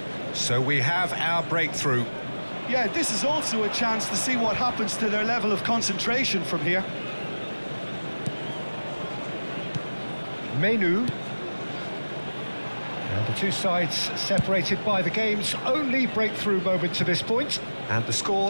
So we have our breakthrough. Yeah, this is also a chance to see what happens to their level of concentration from here. Menu. Now the two sides separated by the game's only breakthrough moment to this point, and the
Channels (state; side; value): inverted; both; correlation -1.00